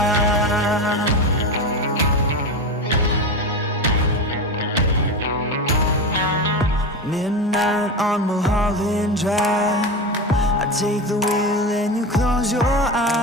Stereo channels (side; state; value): both; normal; correlation 0.22